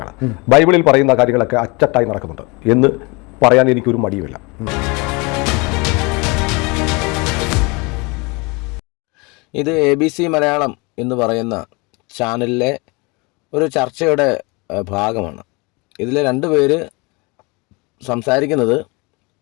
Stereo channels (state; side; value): quieter; right; 27.8 dB